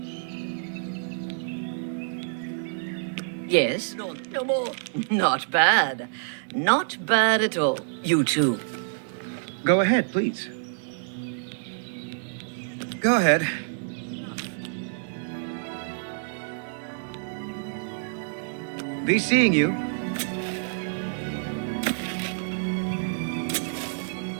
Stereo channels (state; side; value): silent; left; digital silence